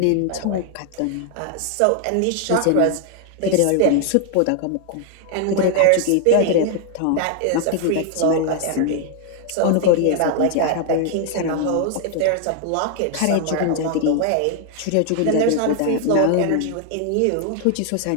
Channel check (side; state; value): both; different; correlation 0.00